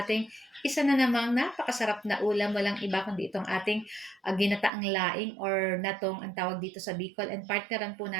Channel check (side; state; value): left; drops out; at 4.7 s